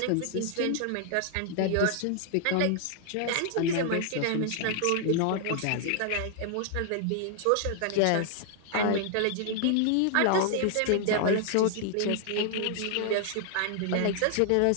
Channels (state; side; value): different; both; correlation 0.00